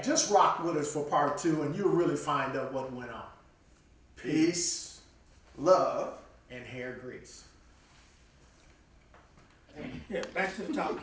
just rock with us for part 2 and you'll really find out what went on. Peace, love, and hair grease. Yeah, back to the topic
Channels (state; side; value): identical; both; correlation 1.00